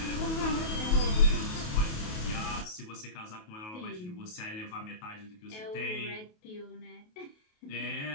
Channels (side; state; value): right; late; 28 ms